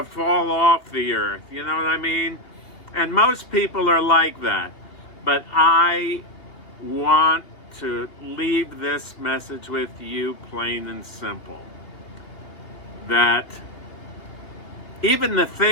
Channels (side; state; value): right; late; 2.9 ms